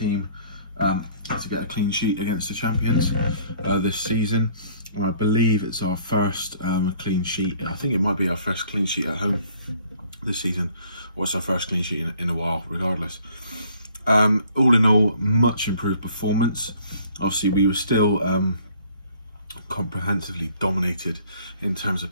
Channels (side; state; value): both; inverted; correlation -0.57